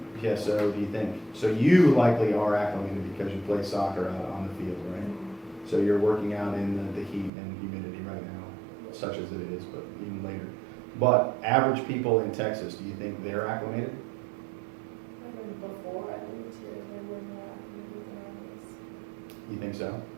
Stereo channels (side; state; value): left; drops out; at 7.3 s